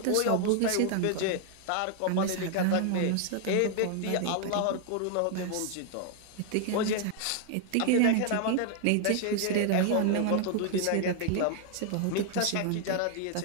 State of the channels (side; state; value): both; different; correlation 0.00